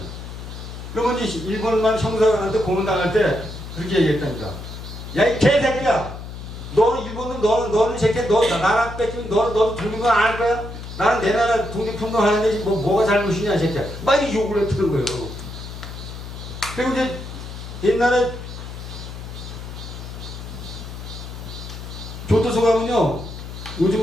그러면 이제 일본만 형사한테 고문당할 때 그렇게 얘기했다니까. 야, 이 개새끼야! 너는 일본은 너는 새끼야. 너 나라 뺏기면 너도 독립은 안 할 거야? 나는 내 나라 독립운동 하는데 뭐가 잘못이냐, 이 새끼야. 막 이렇게 욕을 했다는 거예요. 그리고 이제 옛날에 교도소 가면요.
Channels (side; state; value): left; noise; hum, 10 dB below the sound